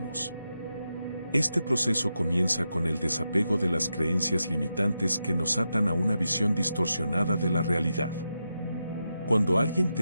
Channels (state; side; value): inverted; both; correlation -0.87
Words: Este proceso comienza con el desapego de las creencias limitantes que nos atan a una visión distorsionada de la realidad. Cuando alguien